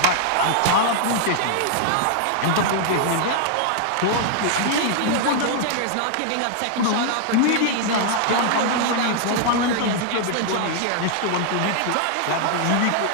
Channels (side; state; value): both; different; correlation 0.00